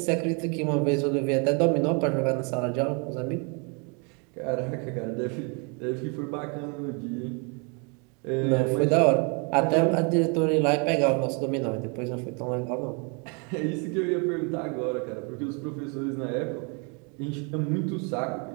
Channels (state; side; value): quieter; left; 34.7 dB